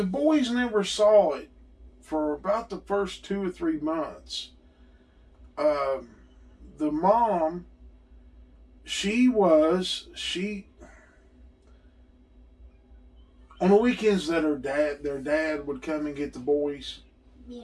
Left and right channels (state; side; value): identical; both; correlation 1.00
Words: boys never saw it for about the first 2 or 3 months. The mom, she on the weekends that their dad would come and get the boys.